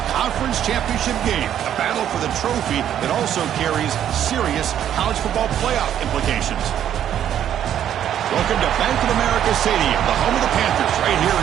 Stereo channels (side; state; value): left; quieter; 10.3 dB